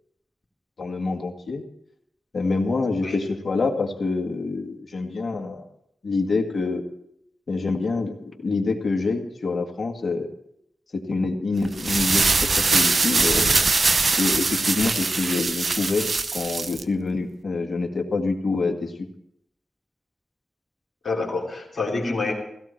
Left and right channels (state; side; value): normal; both; correlation 0.88